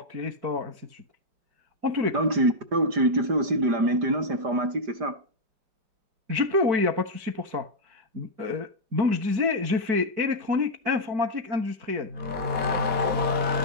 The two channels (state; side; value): late; left; 5.0 ms